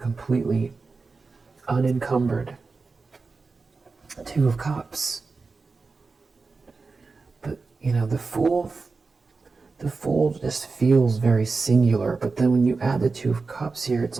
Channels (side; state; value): left; quieter; 4.2 dB